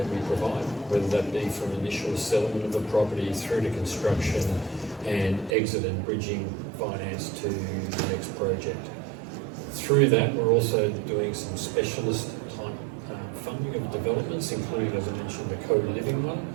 we provide, whether that be from initial settlement of the property through to construction and exit and bridging finance to the next project. Through that, we're also doing some specialist type funding of developments, including, as I mentioned, the co-living one.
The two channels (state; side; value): drops out; left; at 5.6 s